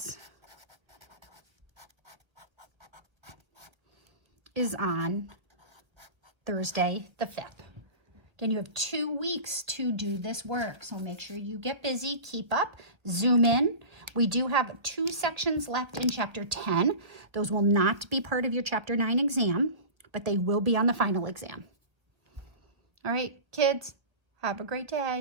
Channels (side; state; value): left; late; 1.5 ms